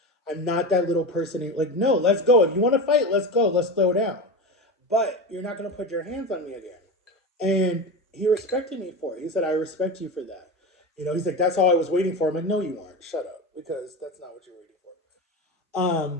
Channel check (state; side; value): normal; both; correlation 0.23